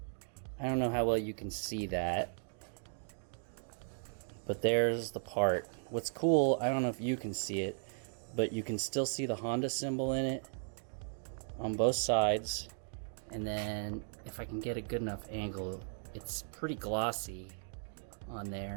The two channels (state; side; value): silent; left; digital silence